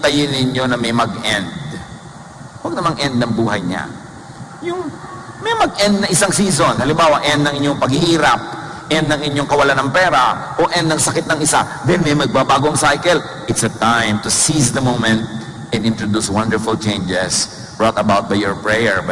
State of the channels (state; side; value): identical; both; correlation 1.00